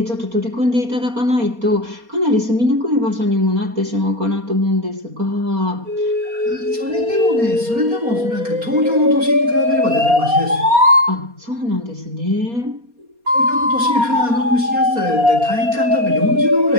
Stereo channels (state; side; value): late; left; 4.2 ms